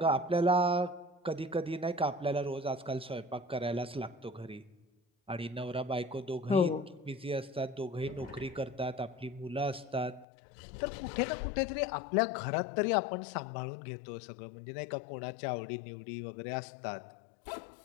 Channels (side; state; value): right; drops out; at 10.2 s